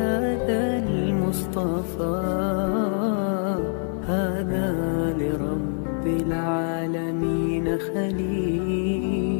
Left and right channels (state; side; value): silent; right; 56 dB below the other